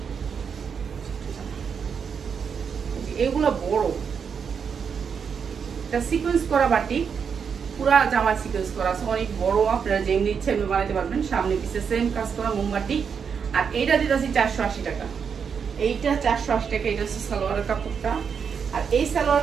এগুলো বড়, এটা সিকোয়েন্স করা বাটিক, পুরা জামা সিকোয়েন্স করা আছে, অনেক বড়, আপনারা যেমনি ইচ্ছে এমনি বানাইতে পারবেন। সামনে পিছে সেম কাজ করা মোমবাটি। আর এইটা দিতেছি 480 টাকা, এইটা 480 টাকা। এটা হচ্ছে সালোয়ারের কাপড়টা, আর এই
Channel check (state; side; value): quieter; left; 6.6 dB